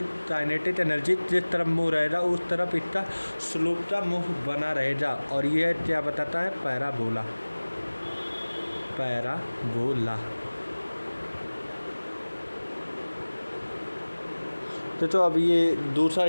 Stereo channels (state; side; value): inverted; both; correlation -1.00